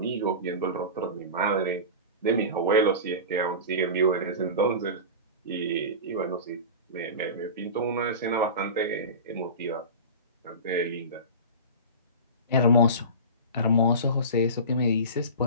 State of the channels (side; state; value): both; inverted; correlation -0.30